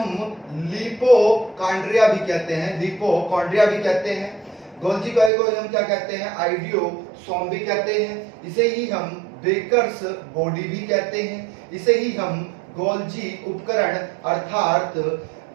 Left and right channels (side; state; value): left; drops out; at 5.3 s